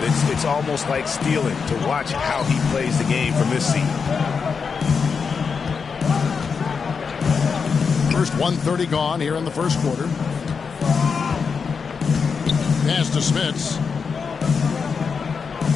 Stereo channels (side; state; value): right; quieter; 5.6 dB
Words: it's almost like stealing to watch how he plays the game from this seat. First 1:30 gone here in the first quarter. Pass to Smits.